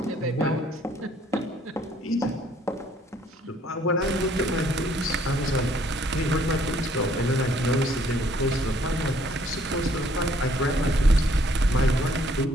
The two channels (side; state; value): both; normal; correlation 0.64